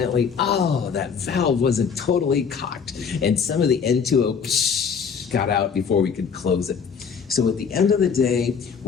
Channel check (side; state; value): right; quieter; 6.4 dB